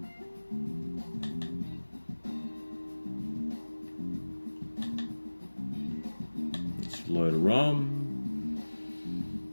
load a ROM.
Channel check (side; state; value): both; inverted; correlation -1.00